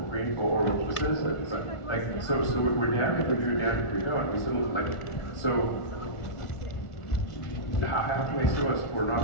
green or citizens. So we're damned if we do, damned if we don't. We still so how can they sue us for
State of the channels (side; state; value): right; late; 1.4 ms